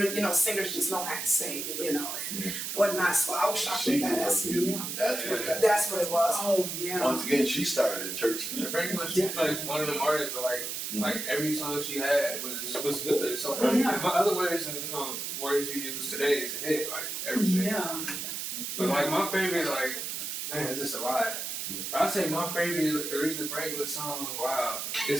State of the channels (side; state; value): right; noise; hiss, 4 dB below the sound